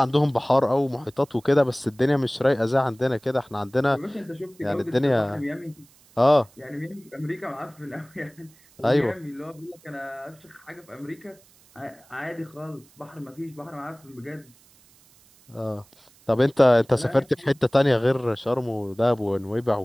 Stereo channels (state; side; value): noise; right; hiss, 29 dB below the sound